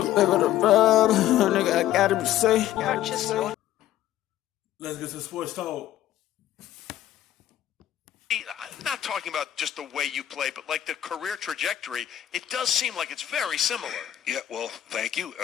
bit of the rub, nigga, I gotta be safe. Let's get to sports talk. I'm not talking about just the way you play, but like the career trajectory, it does seem like it's very similar. Yeah, well, thank you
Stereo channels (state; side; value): quieter; right; 12.5 dB